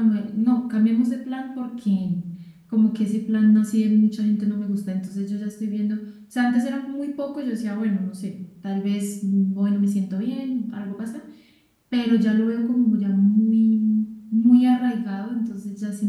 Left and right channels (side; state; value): both; identical; correlation 1.00